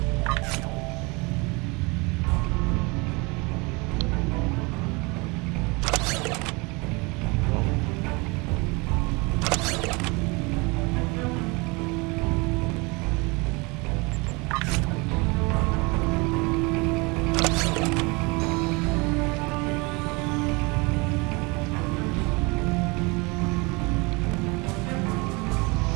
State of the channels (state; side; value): quieter; left; 27.2 dB